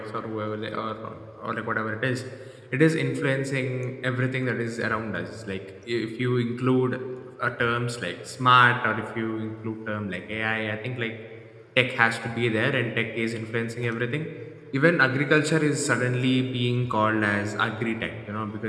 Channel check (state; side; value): identical; both; correlation 1.00